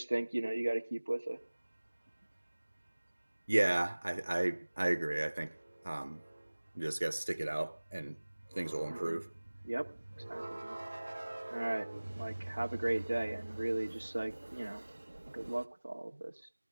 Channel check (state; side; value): inverted; both; correlation -1.00